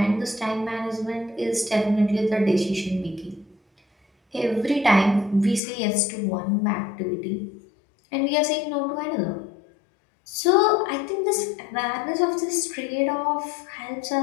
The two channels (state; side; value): drops out; right; at 5.6 s